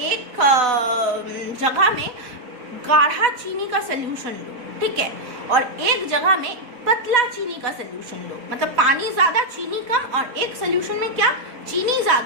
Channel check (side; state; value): left; late; 4.0 ms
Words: एक जगह में गाढ़ा चीनी का सोल्यूशन लो, ठीक है, और एक जगह में पतला चीनी का सोल्यूशन लो, मतलब पानी ज़्यादा चीनी कम, और एक सोल्यूशन में क्या, चीनी